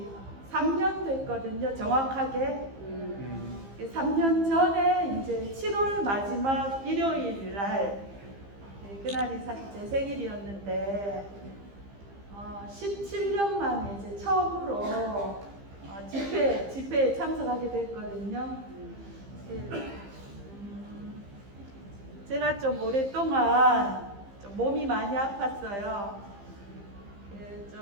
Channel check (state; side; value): late; left; 15 ms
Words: 3년 됐거든요. 정확하게. 3년 전에 이제 7월 마지막 일요일 날 그날이 사실 제 생일이었는데 17년 만에 이제 처음으로 집회에 참석하게 됐거든요. 제가 좀 오랫동안 좀 몸이 많이 아팠어요.